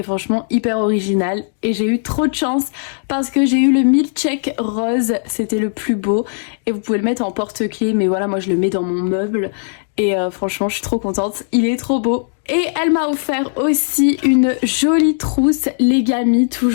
franchement hyper original. Et j'ai eu trop de chance parce que j'ai eu le milkshake rose, c'était le plus beau. Et vous pouvez le mettre en porte-clés, mais voilà, moi je le mets dans mon meuble. Et franchement, je suis trop contente, il est trop beau. Et elle m'a offert aussi une jolie trousse Legami,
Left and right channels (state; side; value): silent; right; digital silence